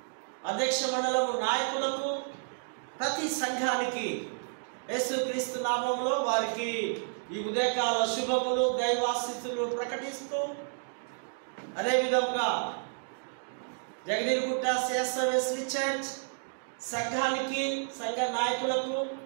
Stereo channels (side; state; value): left; silent; digital silence